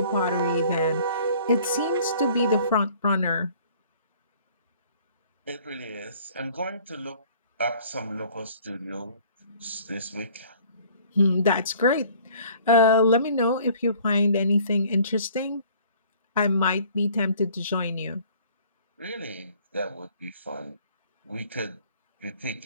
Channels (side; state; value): both; inverted; correlation -0.54